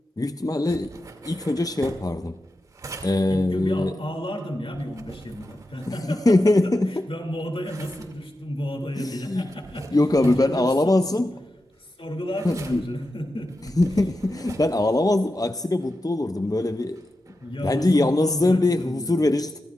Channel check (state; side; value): normal; both; correlation 0.90